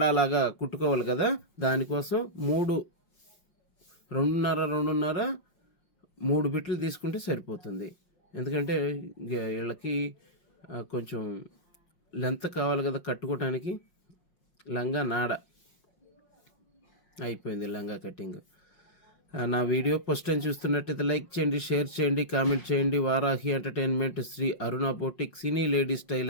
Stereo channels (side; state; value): right; late; 5.6 ms